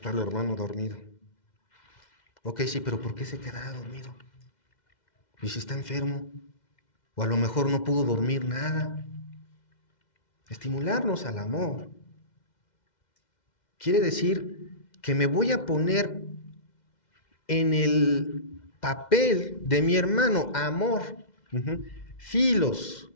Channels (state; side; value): late; right; 2.1 ms